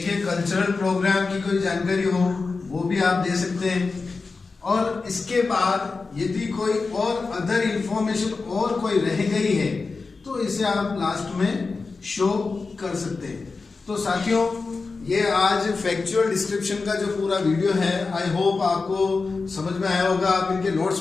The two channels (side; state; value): right; quieter; 4.2 dB